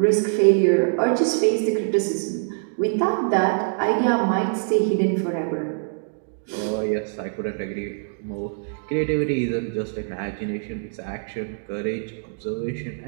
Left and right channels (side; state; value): left; silent; digital silence